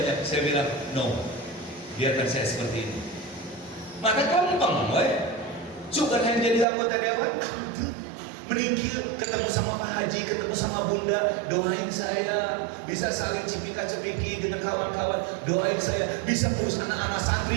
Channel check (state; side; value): drops out; left; at 6.7 s